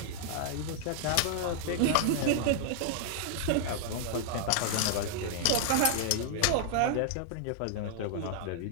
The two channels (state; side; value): different; both; correlation -0.01